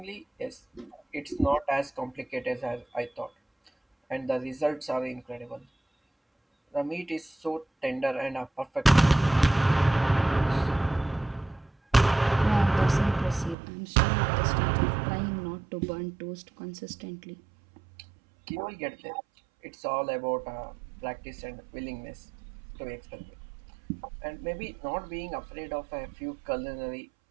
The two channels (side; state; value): left; drops out; at 13.6 s